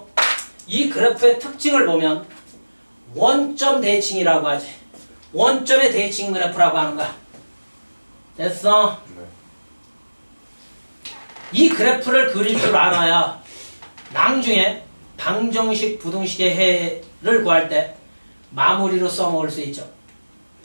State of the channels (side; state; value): both; inverted; correlation -1.00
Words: 이 그래프의 특징을 보면 원점 대칭이라고 하지. 원점의 대칭 그래프라고 하는 거야. 됐어? 네. 이 그래프를 그릴 줄 알아야 나중에 방정식, 부등식의 해를 구할 때 마무리로 써먹을 수 있죠.